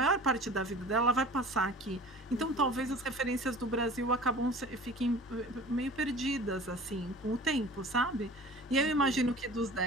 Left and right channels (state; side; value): normal; both; correlation 0.42